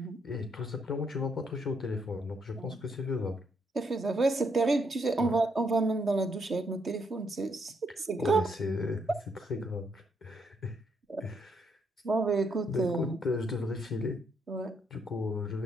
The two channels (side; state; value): both; normal; correlation 0.75